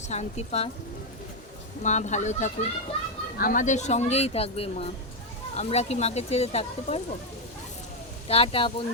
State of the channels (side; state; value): both; normal; correlation 0.03